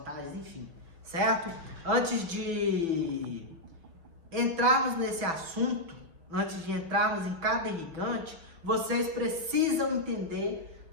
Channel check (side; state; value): left; late; 6.0 ms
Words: enfim, certo? Antes de entrarmos nesse assunto, antes de entrarmos em cada irrigante, vocês precisam entender